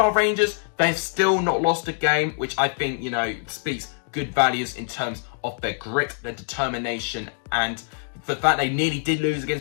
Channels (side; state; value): right; silent; 62 dB below the other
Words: Rangers, they've still not lost a game, which I think, speaks good values in terms of their grit, their determination, and the fact they nearly did lose